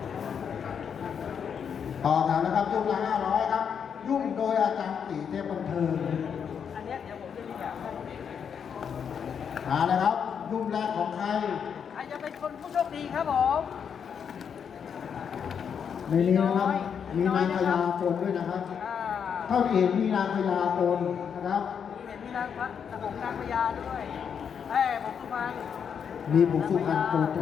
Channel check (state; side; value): quieter; right; 7.3 dB